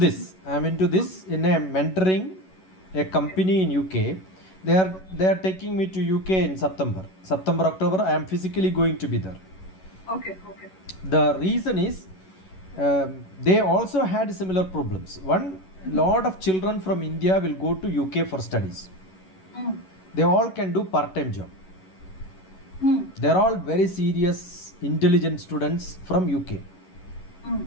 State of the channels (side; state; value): right; late; 11 ms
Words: in a mentoring a company in UK. They are taking me to UK in September October. I am physically going to be there. Okay. The reason is they also had similar problems. One, lot of children from India will go to UK for studies. They all can do part-time job. They're all very serious, intelligent students from UK.